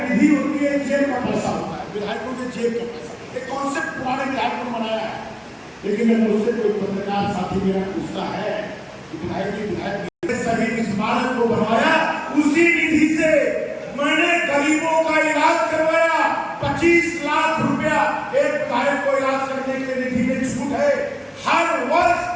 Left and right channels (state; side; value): identical; both; correlation 1.00